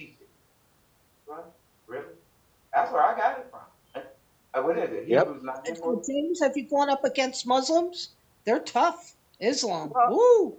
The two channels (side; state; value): both; identical; correlation 1.00